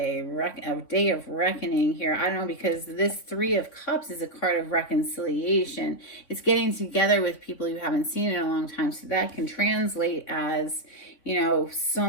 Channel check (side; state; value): right; late; 3.8 ms